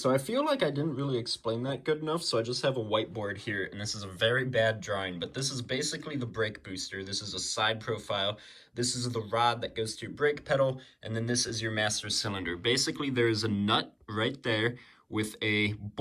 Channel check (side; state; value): both; identical; correlation 1.00